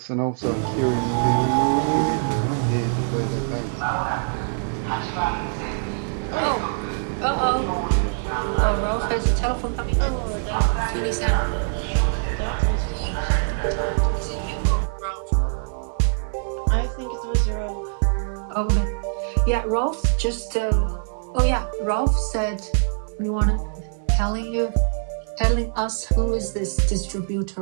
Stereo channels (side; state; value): left; silent; digital silence